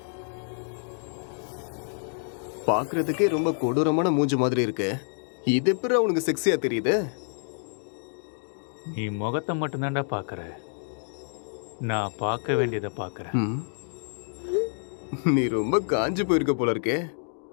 பார்க்கறதுக்கே ரொம்ப கொடூரமான மூஞ்சி மாதிரி இருக்கு. இது எப்படி அவனுக்கு செக்ஸியா தெரியுது? நீ முகத்தை மட்டும்தான்டா பார்க்குற, நான் பார்க்க வேண்டியதை பார்க்குறேன். ம். நீ ரொம்ப காஞ்சு போயிருக்க போல இருக்கே.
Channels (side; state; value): right; silent; digital silence